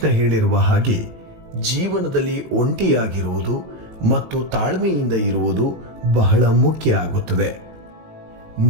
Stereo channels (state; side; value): late; left; 18 ms